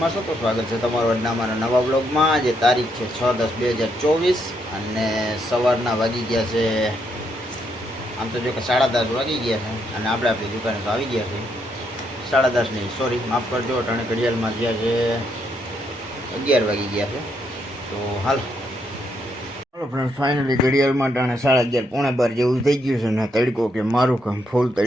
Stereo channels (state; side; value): normal; both; correlation 0.76